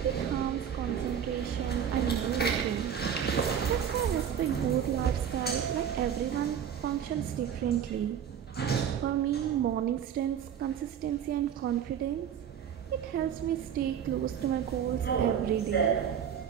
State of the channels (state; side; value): quieter; left; 8.6 dB